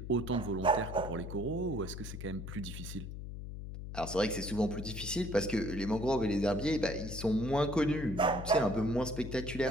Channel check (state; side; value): noise; left; hum, 8 dB below the sound